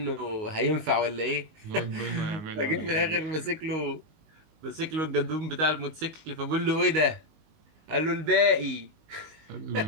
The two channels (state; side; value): late; left; 19 ms